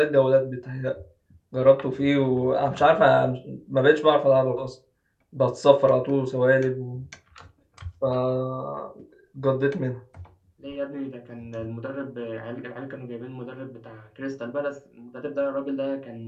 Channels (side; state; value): both; identical; correlation 1.00